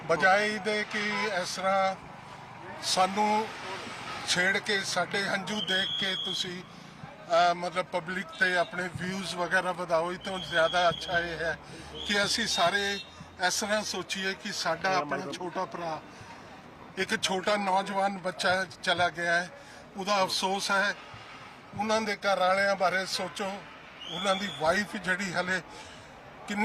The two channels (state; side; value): identical; both; correlation 1.00